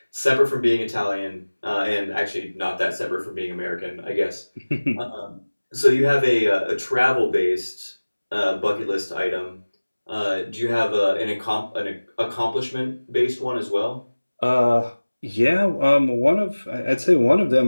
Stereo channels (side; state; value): both; inverted; correlation -1.00